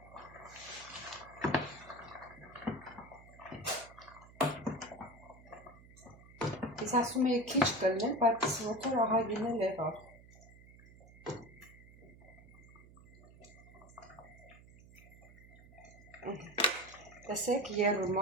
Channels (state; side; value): noise; right; hum, 21 dB below the sound